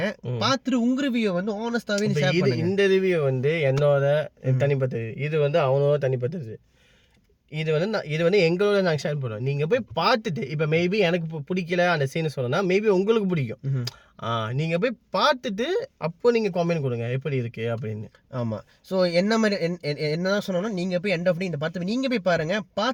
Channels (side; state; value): both; identical; correlation 1.00